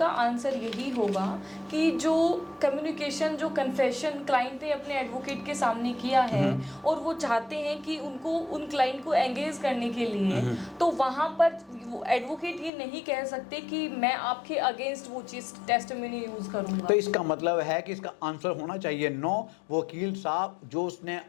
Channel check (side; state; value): right; drops out; at 12.7 s